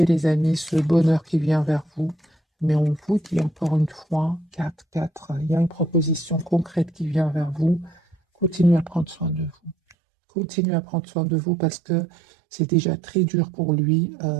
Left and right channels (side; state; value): left; drops out; at 10.0 s